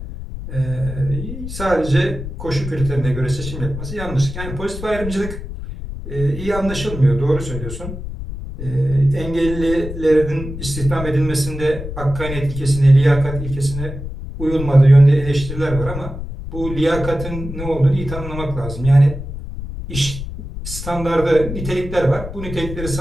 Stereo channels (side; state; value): left; noise; rumble, 8 dB below the sound